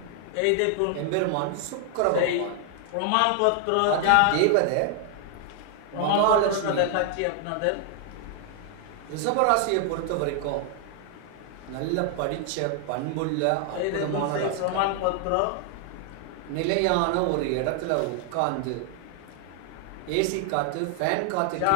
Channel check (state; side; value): different; both; correlation 0.00